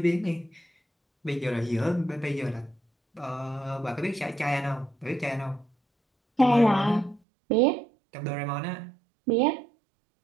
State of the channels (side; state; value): left; drops out; at 7.2 s